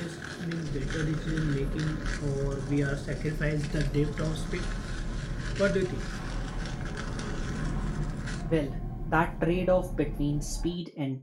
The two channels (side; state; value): both; identical; correlation 1.00